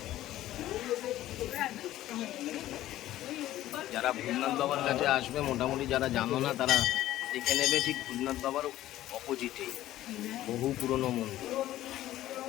যারা ভূতনাথ বাবার কাছে আসবে মোটামুটি যারা জানো না তারা দেখে নেবে, ঠিক ভূতনাথ বাবার অপোজিটেই বহু পুরনো মন্দির।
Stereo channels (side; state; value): right; quieter; 14.2 dB